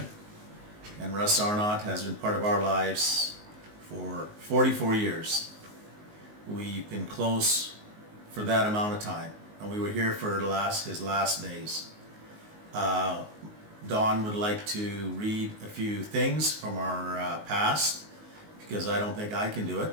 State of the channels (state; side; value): late; left; 19 ms